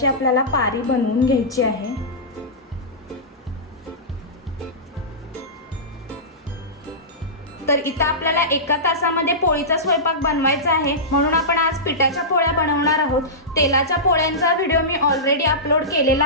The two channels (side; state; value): both; normal; correlation -0.17